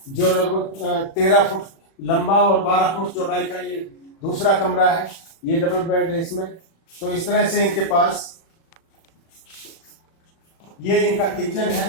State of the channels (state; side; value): late; right; 36 ms